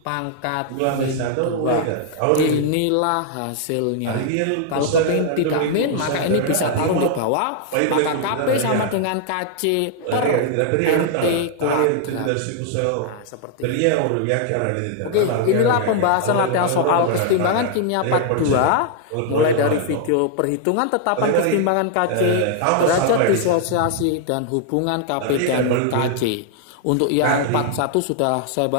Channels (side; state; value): both; different; correlation 0.00